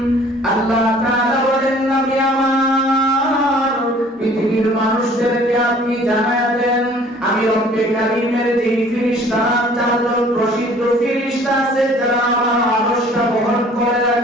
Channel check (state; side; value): normal; both; correlation 0.53